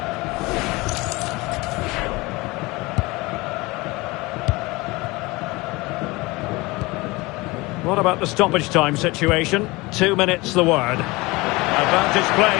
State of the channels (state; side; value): quieter; right; 22.9 dB